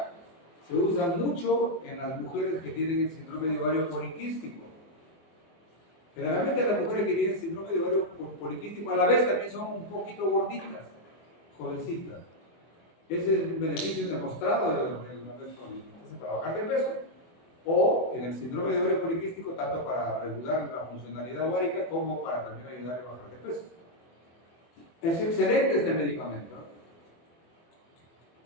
se usa mucho en las mujeres que tienen el síndrome de ovario poliquístico. Generalmente las mujeres que tienen síndrome de ovario poliquístico a la vez también son un poquito gorditas, jovencitas. Ese es un beneficio demostrado de la metformina. Entonces, para bajar de peso, o en el síndrome de ovario poliquístico, tanto para regular la funcionalidad ovárica como para también ayudar a bajar de peso. Es excelente este medicamento.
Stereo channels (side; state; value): right; late; 24 ms